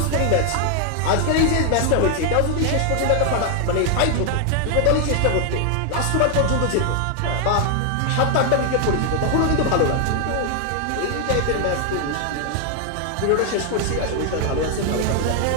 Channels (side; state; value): both; different; correlation 0.00